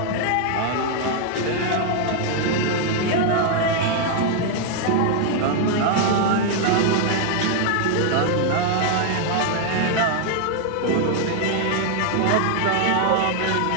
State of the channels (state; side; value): different; both; correlation 0.00